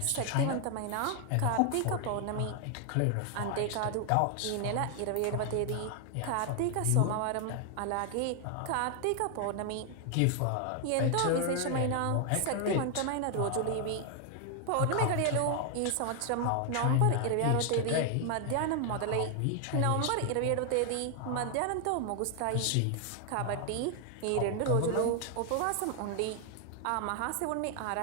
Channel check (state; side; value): different; both; correlation 0.00